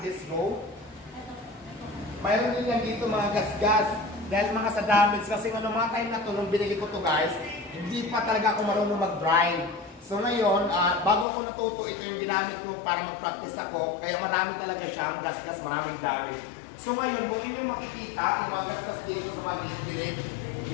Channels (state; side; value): drops out; right; at 11.2 s